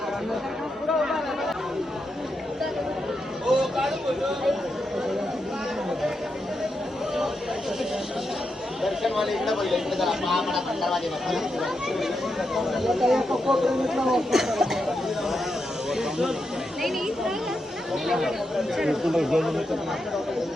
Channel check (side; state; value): both; normal; correlation 0.85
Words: दर्शनवाले इकडे बोलले इकडे जरा महामडा दरवाजे